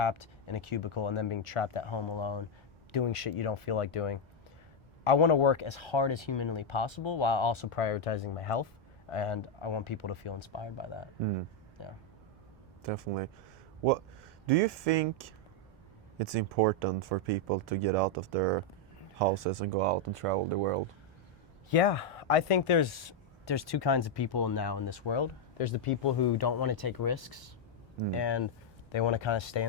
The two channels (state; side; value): normal; both; correlation 0.00